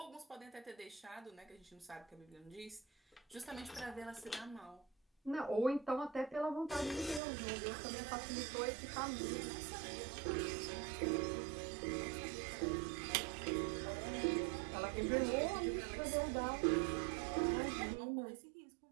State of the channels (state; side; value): drops out; left; at 7.2 s